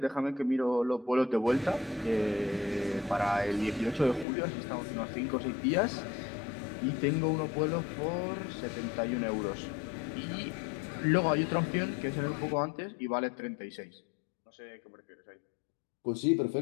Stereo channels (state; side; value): drops out; right; at 4.2 s